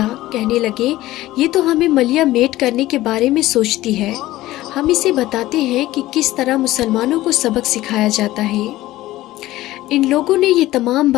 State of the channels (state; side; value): quieter; right; 16.3 dB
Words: कहने लगे, ये तो हमें मलिया मेट करने के बारे में सोचती है। हम इसे बताते हैं कि किस तरह मुसलमानों को सबक सिखाया जाता है। इन लोगों ने ये तमाम